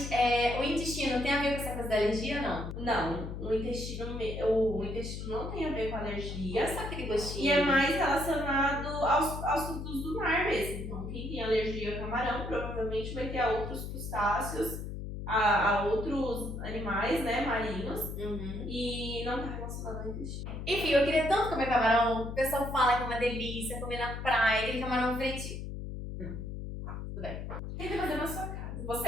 o intestino tem a ver com essa coisa da alergia ou não? Não, o intestino não tem a ver com alergia. Só aquele gostinho. E é mais relacionado aos frutos do mar mesmo. Então, quem tem alergia a camarão provavelmente vai ter a outros crustáceos, a outros animais, né, marinhos. E não tá relacionado ao intestino. Enfim, eu queria tanto comer camarão. O pessoal fala que é uma delícia, comer na praia, aquele camarão frito. tudo bem. Tenta fazer na sua casa.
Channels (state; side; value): noise; left; hum, 7 dB below the sound